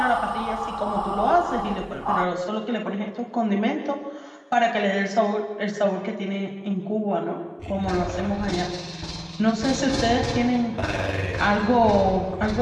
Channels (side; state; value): both; identical; correlation 1.00